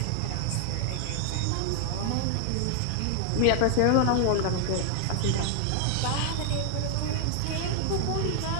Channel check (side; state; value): both; different; correlation 0.00